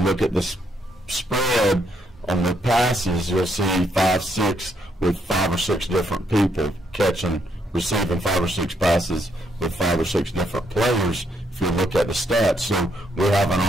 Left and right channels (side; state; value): both; normal; correlation 0.74